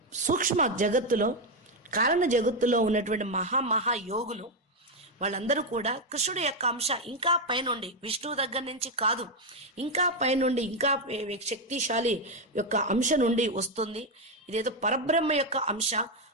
సూక్ష్మ జగత్తులో, కారణ జగత్తులో ఉన్నటువంటి మహా యోగులు వాళ్ళందరూ కూడా కృష్ణుడి యొక్క అంశ ఇంకా పైనుండి, విష్ణువు దగ్గర నుంచి కాదు, ఇంకా పైనుండి, ఇంకా శక్తిశాలి యొక్క అంశ నుండి వస్తుంది. ఇదేదో పరబ్రహ్మ యొక్క అంశ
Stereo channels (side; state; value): both; normal; correlation 0.06